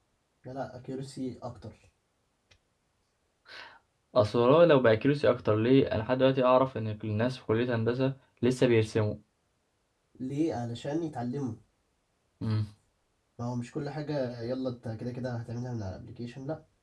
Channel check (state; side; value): identical; both; correlation 1.00